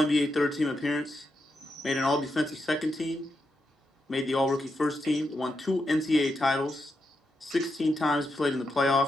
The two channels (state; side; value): normal; both; correlation 0.84